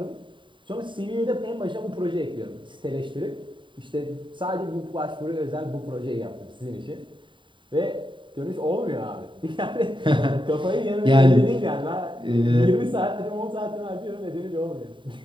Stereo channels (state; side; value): late; left; 0.23 ms